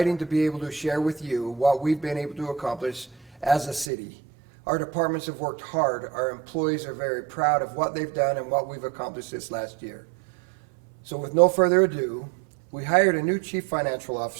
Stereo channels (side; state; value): left; drops out; at 3.9 s